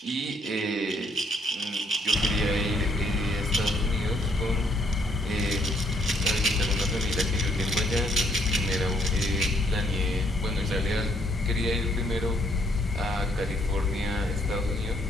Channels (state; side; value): normal; both; correlation 0.69